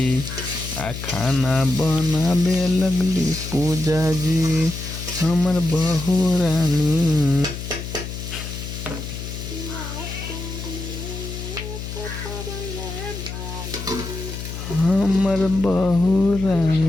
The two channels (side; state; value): left; noise; hum, 8 dB below the sound